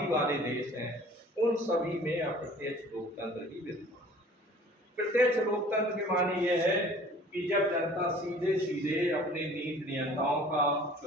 वाले देश हैं, उन सभी में अप्रत्यक्ष लोकतंत्र ही विद्यमान है। प्रत्यक्ष लोकतंत्र के माने यह है कि जब जनता सीधे सीधे अपने नीति नियंताओं का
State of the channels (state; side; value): normal; both; correlation 0.49